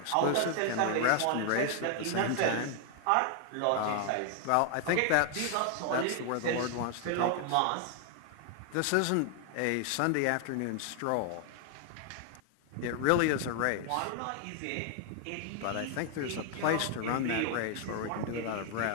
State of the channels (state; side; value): different; both; correlation 0.00